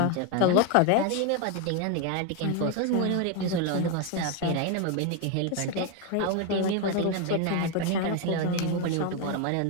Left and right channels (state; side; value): different; both; correlation 0.01